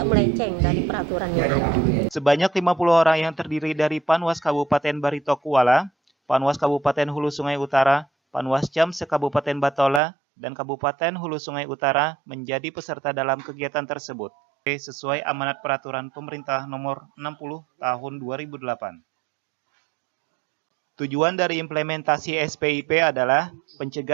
melenceng dari peraturan yang ada. Sebanyak 50 orang yang terdiri dari Panwas Kabupaten Barito Kuala, Panwas Kabupaten Hulu Sungai Utara, Panwascam se-Kabupaten Batola, dan Kabupaten Hulu Sungai Utara menjadi peserta dalam kegiatan tersebut, sesuai amanat peraturan pemerintah nomor 60 tahun 2008. Tujuan dari implementasi SPIP adalah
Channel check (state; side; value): drops out; left; at 10.0 s